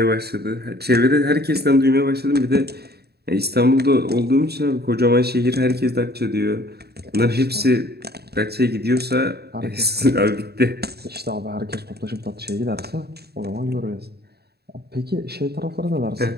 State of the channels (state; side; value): late; left; 0.47 ms